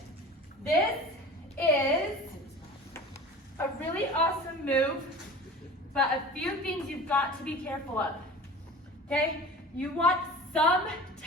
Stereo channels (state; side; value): normal; both; correlation 0.39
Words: This is a really awesome move, but a few things you've got to be careful of. Okay? You want some